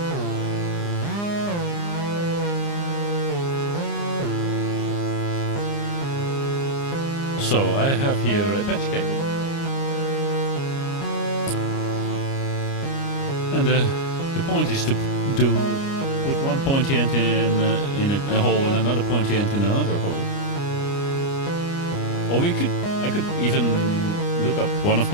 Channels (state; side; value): late; right; 29 ms